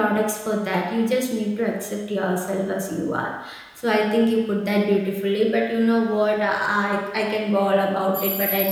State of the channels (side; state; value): both; identical; correlation 1.00